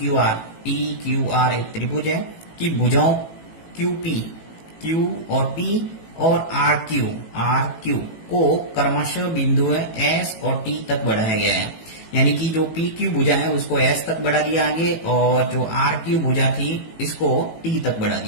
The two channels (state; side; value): late; right; 18 ms